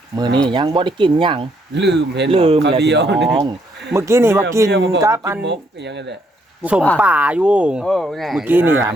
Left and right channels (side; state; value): both; normal; correlation 0.72